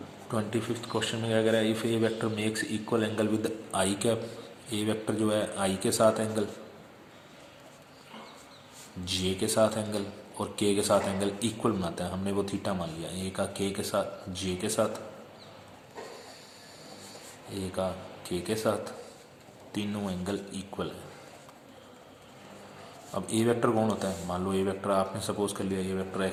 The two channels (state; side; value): identical; both; correlation 1.00